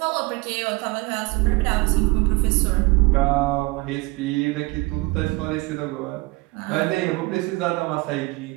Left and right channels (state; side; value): quieter; left; 22.6 dB